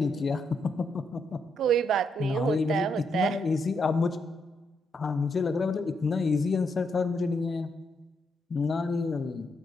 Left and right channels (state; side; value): normal; both; correlation 0.78